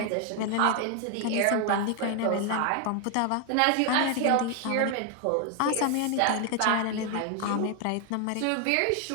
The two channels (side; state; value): both; different; correlation 0.01